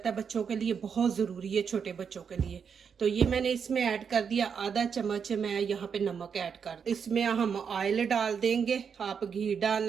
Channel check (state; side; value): quieter; left; 6.7 dB